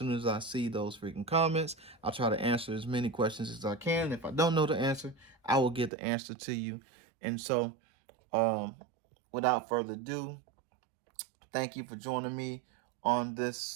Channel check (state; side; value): drops out; left; at 5.9 s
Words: as I see those freaking comments. I'll try to answer as many questions as I can. If I don't know the answer, I will get the answer to you. And so, um, without further ado, thank you for joining me on